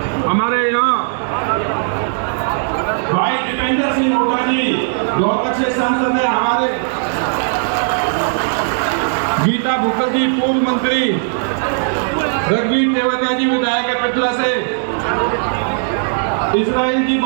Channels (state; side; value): silent; left; digital silence